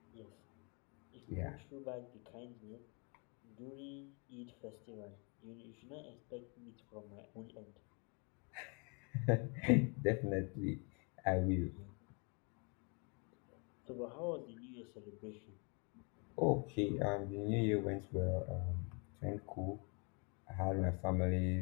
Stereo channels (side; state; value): right; quieter; 34.8 dB